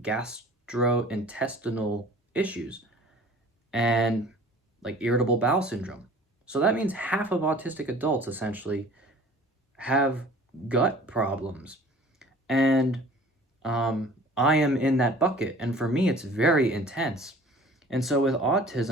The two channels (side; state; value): both; normal; correlation 0.47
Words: gastrointestinal issues and like irritable bowel syndrome. So that means half of autistic adults essentially have gut problems. And I am in that bucket. And for me, it's very intense. And so with